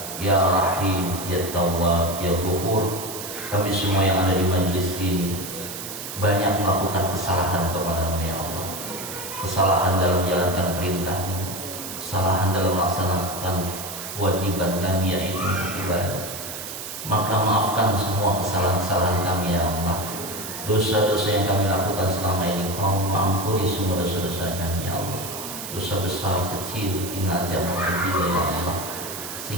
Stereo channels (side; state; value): right; noise; hiss, 8 dB below the sound